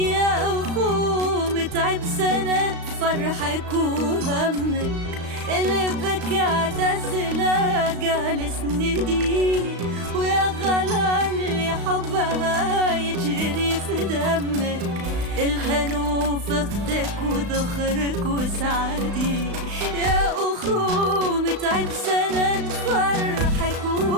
أخو متعب سند فرحك وهمك، اللي بك اعتزلها جالس ندي، ويا غلا اللي حبها يجري في دمك، الهنو في اختك وذخرك وسعدي. يا أخو متعب سند فرحك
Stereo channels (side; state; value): left; late; 35 ms